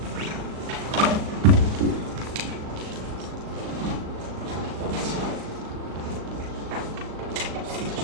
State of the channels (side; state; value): left; late; 38 ms